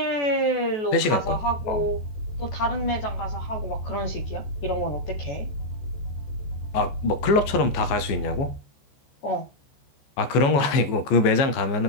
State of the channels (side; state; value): right; late; 14 ms